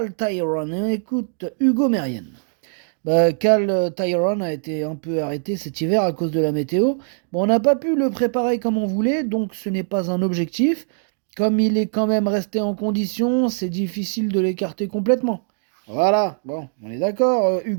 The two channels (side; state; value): left; silent; digital silence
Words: Tyrone, écoute Hugo Mérienne. Cal Tyrone a été un peu arrêté cet hiver à cause de la météo. Bon, on n'a pas pu le préparer comme on voulait, donc ce n'est pas un objectif. Comme il est quand même resté en condition, c'est difficile de l'écarter complètement. Voilà, bon, on est d'accord,